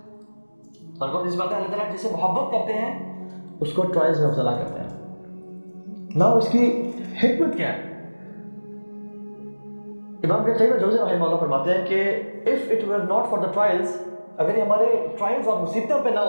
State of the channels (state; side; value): inverted; both; correlation -1.00